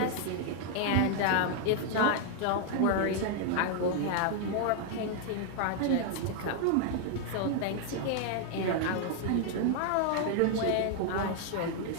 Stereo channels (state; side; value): different; both; correlation 0.00